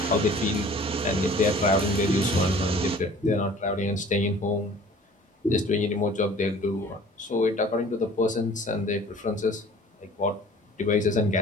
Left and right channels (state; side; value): normal; both; correlation 0.48